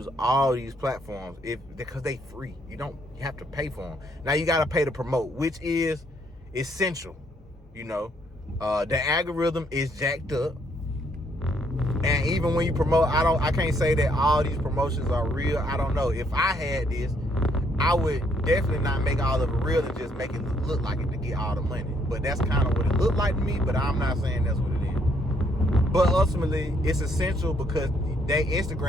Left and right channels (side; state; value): both; normal; correlation 0.70